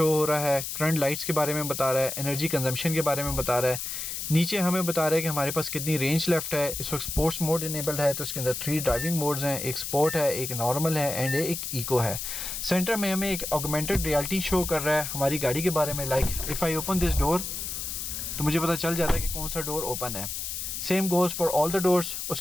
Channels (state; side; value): noise; left; hiss, 5 dB below the sound